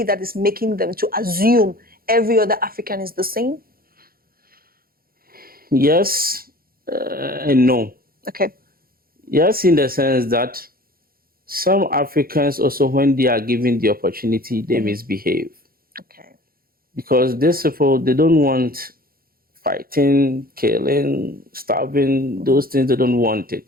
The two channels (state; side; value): late; left; 0.43 ms